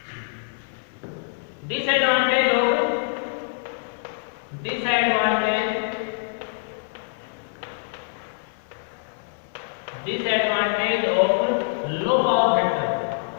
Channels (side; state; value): right; silent; digital silence